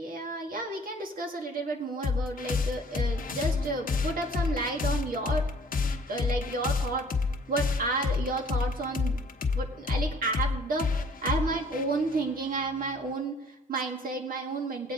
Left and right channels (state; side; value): normal; both; correlation 0.55